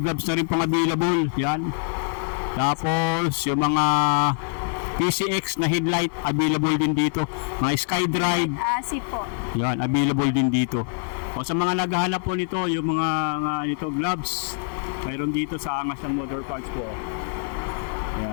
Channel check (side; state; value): right; silent; 60 dB below the other